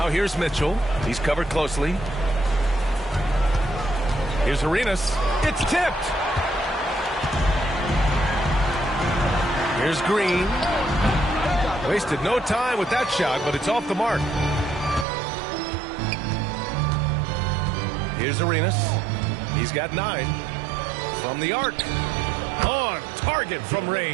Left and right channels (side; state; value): left; drops out; at 15.1 s